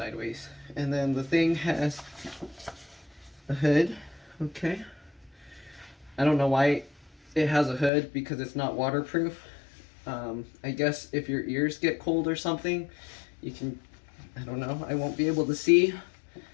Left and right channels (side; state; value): right; drops out; at 7.9 s